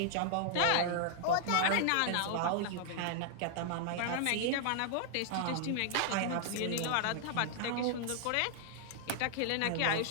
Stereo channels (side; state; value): both; different; correlation 0.00